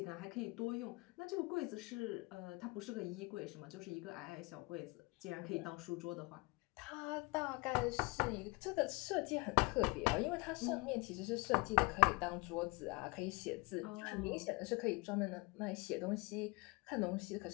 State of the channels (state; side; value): quieter; right; 26.8 dB